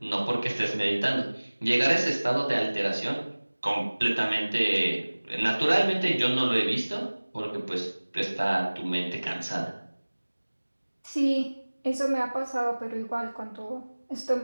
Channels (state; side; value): inverted; both; correlation -1.00